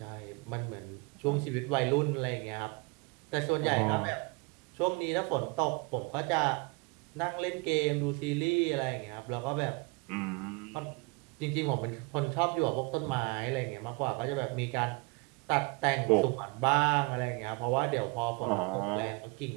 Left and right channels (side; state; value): left; quieter; 29.2 dB